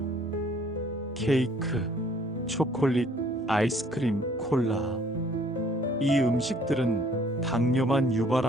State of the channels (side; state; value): both; normal; correlation 0.59